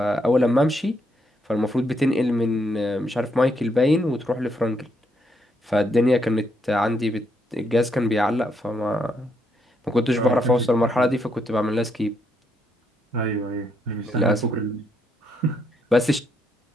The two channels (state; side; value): normal; both; correlation 0.76